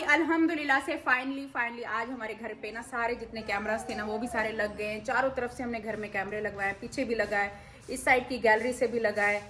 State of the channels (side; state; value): both; identical; correlation 1.00